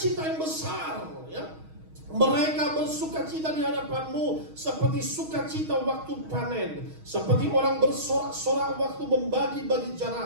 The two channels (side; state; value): left; late; 6.3 ms